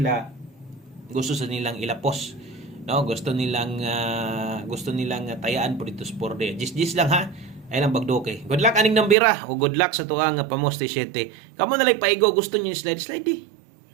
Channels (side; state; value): left; drops out; at 9.2 s